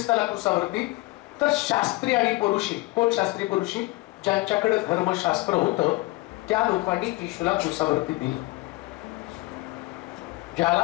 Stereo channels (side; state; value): right; quieter; 21.4 dB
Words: क्रुसावरती. तर शास्त्री आणि परुषी. कोण शास्त्री परुषी? ज्यांच्याकडे धर्मशास्त्र होतं त्या लोकांनी येशूला क्रुसावरती दिलं.